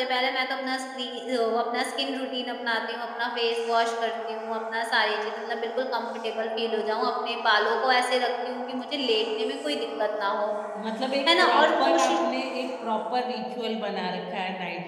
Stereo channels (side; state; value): both; identical; correlation 1.00